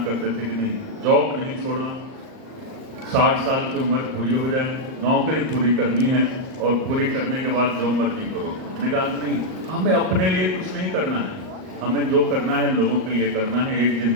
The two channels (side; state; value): left; late; 38 ms